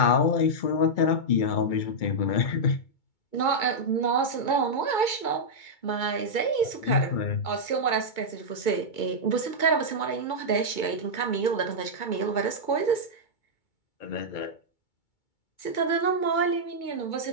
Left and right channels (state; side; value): late; right; 2.2 ms